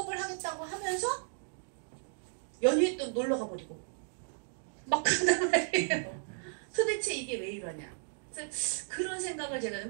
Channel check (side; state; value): left; silent; digital silence